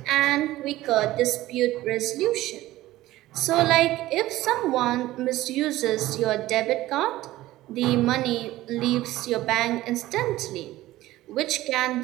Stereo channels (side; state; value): left; quieter; 16.3 dB